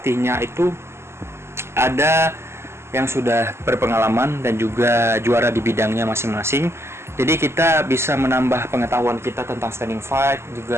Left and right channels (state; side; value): late; left; 0.12 ms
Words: itu ada yang sudah berpengalaman dan juga juara di bidangnya masing-masing. Jadi kita bisa menambah pengetahuan kita tentang standing fight,